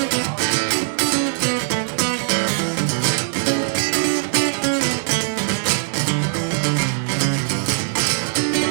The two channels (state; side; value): silent; left; digital silence